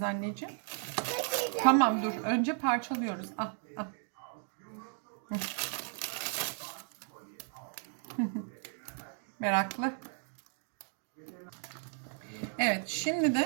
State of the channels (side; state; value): left; silent; 55 dB below the other